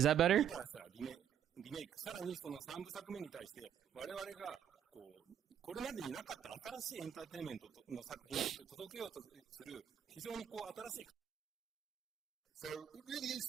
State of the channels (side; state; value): left; quieter; 9.2 dB